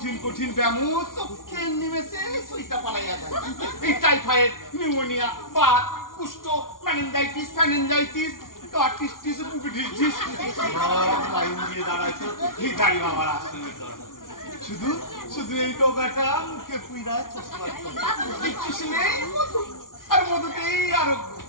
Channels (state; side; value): late; right; 0.91 ms